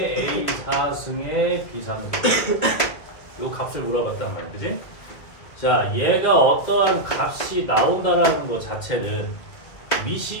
A 4승의 B 3승 요 값을 물어봤단 말이야, 그지? 자, 얘가 어떠한 값이 나온다라는 것 자체는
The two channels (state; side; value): late; right; 2.2 ms